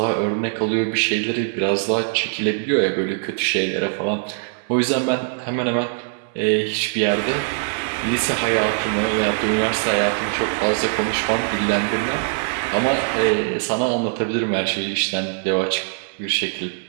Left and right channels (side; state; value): left; silent; 64 dB below the other